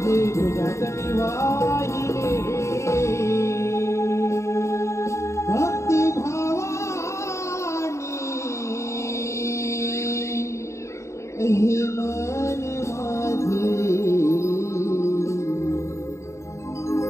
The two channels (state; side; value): late; right; 0.14 ms